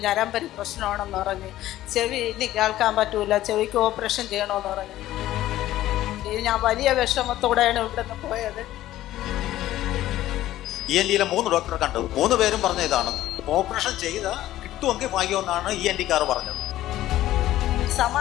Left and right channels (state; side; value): quieter; right; 14.3 dB